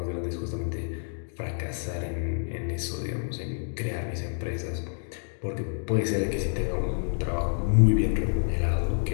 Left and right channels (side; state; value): right; silent; 59 dB below the other